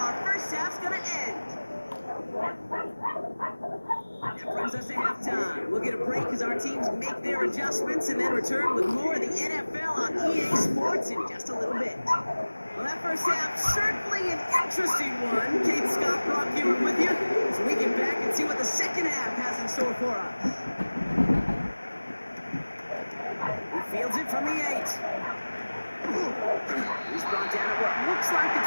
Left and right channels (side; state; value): both; inverted; correlation -1.00